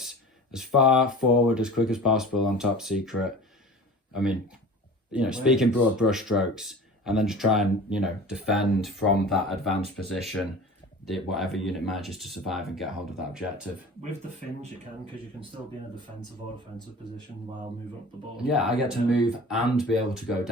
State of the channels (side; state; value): both; normal; correlation 0.39